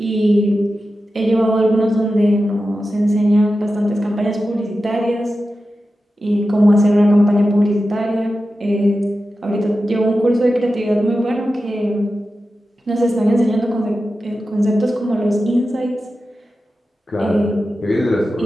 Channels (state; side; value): normal; both; correlation 0.92